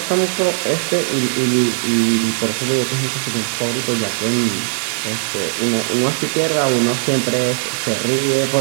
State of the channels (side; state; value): left; silent; 62 dB below the other